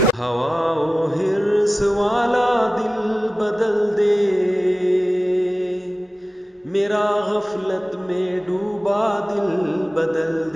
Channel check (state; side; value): normal; both; correlation 0.95